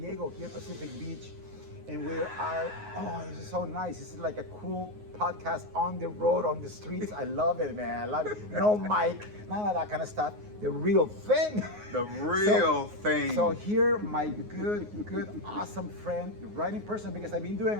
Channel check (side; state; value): left; late; 9.5 ms